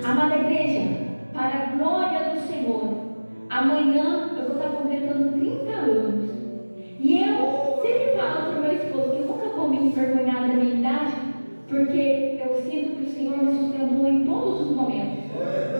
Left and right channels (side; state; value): both; inverted; correlation -1.00